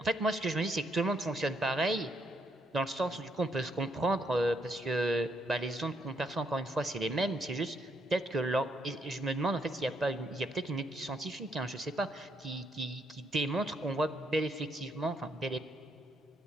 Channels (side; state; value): both; normal; correlation 0.74